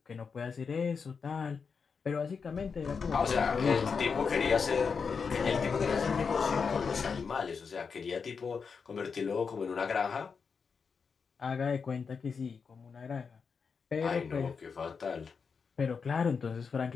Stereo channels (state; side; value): quieter; right; 5.6 dB